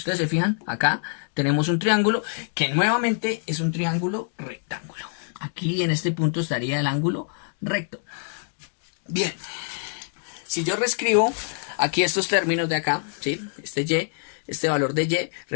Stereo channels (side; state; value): right; silent; digital silence